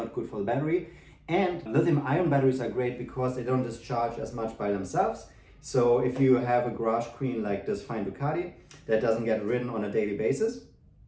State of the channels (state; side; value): identical; both; correlation 1.00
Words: good for the battery. And lithium-ion batteries are great because they don't discharge as much by themselves. So if you have a garage queen like this fine Ducati that doesn't get ridden on a daily basis,